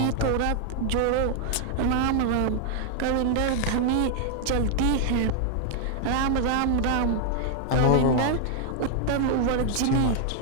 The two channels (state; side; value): different; both; correlation 0.00